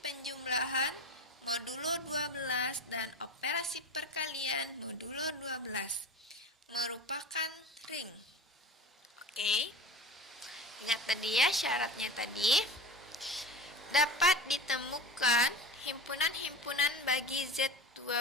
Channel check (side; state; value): both; normal; correlation 0.31